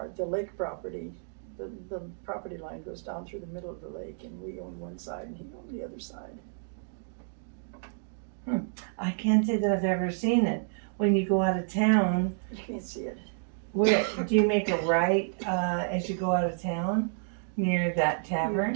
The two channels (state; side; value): silent; left; digital silence